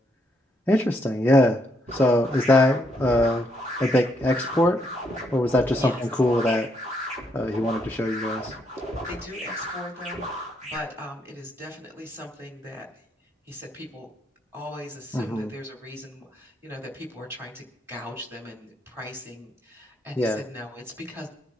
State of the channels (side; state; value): both; normal; correlation 0.75